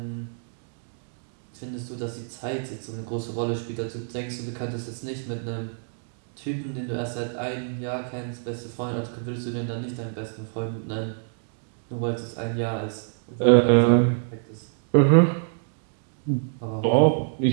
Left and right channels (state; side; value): silent; left; digital silence